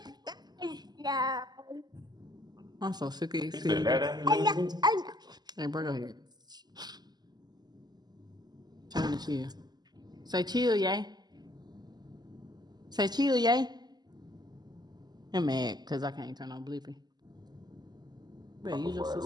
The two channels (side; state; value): left; late; 0.20 ms